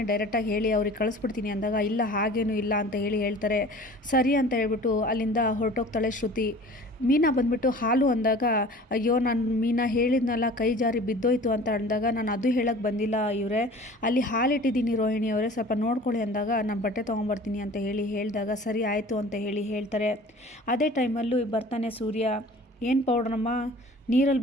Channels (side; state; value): both; normal; correlation 0.44